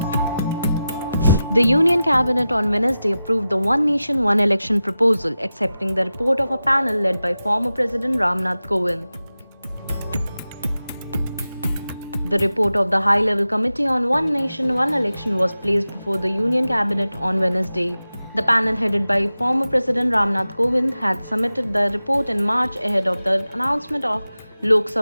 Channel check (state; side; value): inverted; both; correlation -0.94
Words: The Union Cabinet on Wednesday approved the One Nation, One Election proposal, accepting the report of a panel led by former President Ramnath Kovind. The report of the High-Level Committee on One Nation, One Election was placed before the Union Cabinet on Wednesday. The panel headed by former President Ramnath Kovind had submitted the report in March ahead of the announcement of Lok